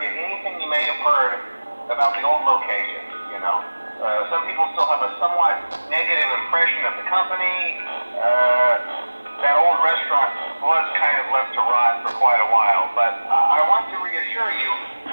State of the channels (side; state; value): both; inverted; correlation -1.00